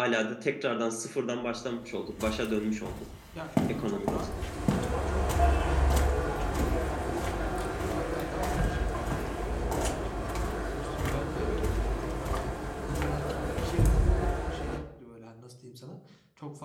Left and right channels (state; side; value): identical; both; correlation 1.00